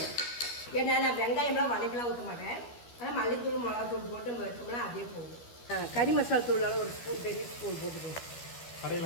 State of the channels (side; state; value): right; late; 12 ms